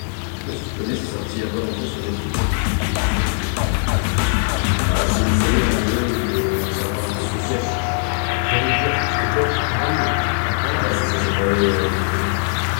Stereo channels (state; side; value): silent; right; 57 dB below the other